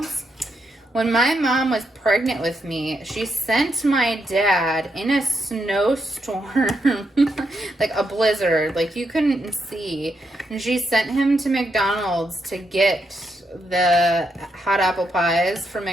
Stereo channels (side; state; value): both; normal; correlation 0.81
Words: When my mom was pregnant with me, she sent my dad in a snowstorm, like a blizzard, like you couldn't see. And she sent him to McDonald's to get the hot apple pies from